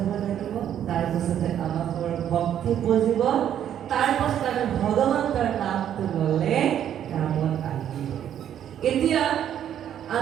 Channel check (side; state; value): left; quieter; 10.1 dB